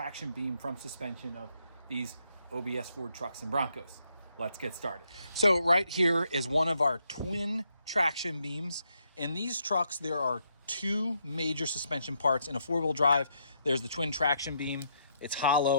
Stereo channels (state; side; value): inverted; both; correlation -0.76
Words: beam from suspension of these OBS Ford trucks and Broncos. Let's get started. So right here is one of our twin traction beams. In these trucks, there are two major suspension parts. In a four-wheel drive, there's the twin traction beam. It's